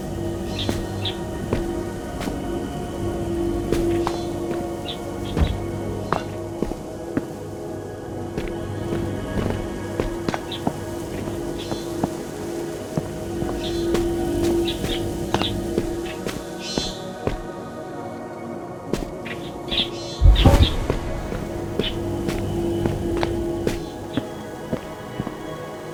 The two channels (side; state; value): both; identical; correlation 1.00